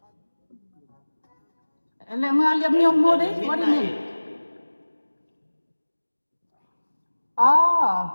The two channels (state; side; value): inverted; both; correlation -1.00